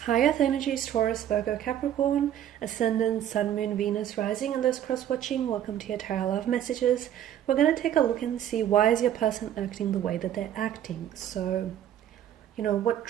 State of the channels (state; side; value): quieter; left; 10.8 dB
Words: High Earth energies, Taurus, Virgo, Capricorn, Ascendant, Sun, Moon, Venus, Rising, and those cross-watching. Welcome to your Tarot Love Messages. We're going to take a look and see why is your person acting the way that they're acting. So, what